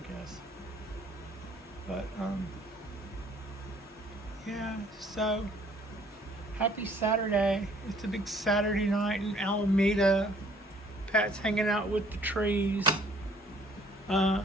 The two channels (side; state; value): both; normal; correlation 0.59